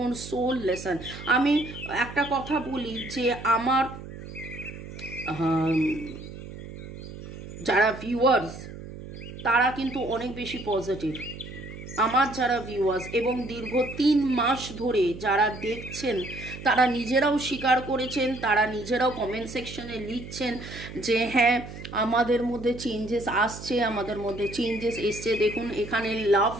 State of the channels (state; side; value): noise; right; hum, 12 dB below the sound